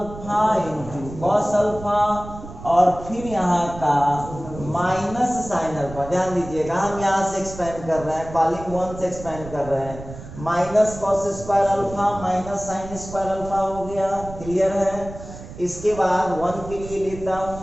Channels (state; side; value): noise; right; rumble, 13 dB below the sound